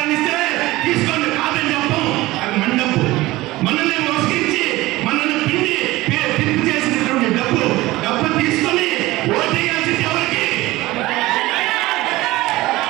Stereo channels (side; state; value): left; quieter; 18.7 dB